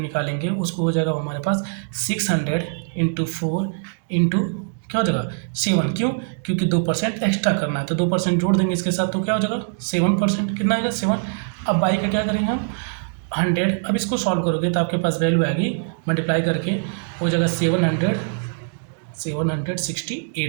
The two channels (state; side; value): silent; left; digital silence